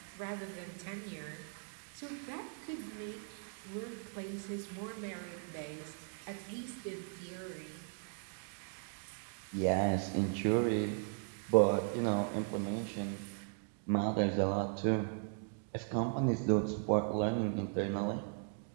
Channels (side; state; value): left; silent; 53 dB below the other